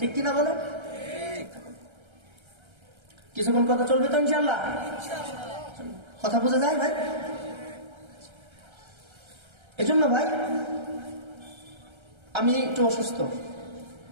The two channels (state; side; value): late; left; 1.3 ms